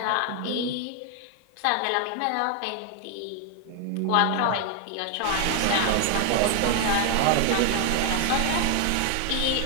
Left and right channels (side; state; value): both; different; correlation 0.01